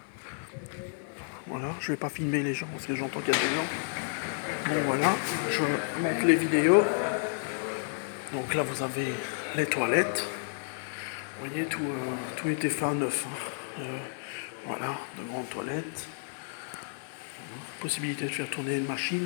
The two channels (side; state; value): right; silent; digital silence